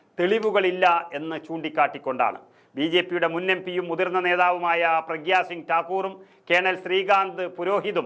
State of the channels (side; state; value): both; identical; correlation 1.00